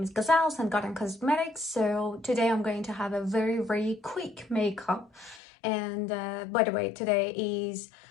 is Gazelle and Garden Cosmetics. So today I'm going to have a very quick makeup, and by the way, today is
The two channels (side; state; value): right; drops out; at 5.4 s